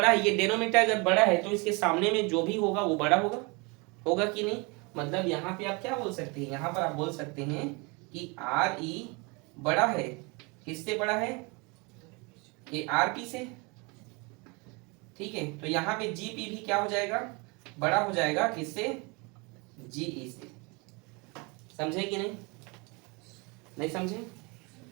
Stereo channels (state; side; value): quieter; left; 28.9 dB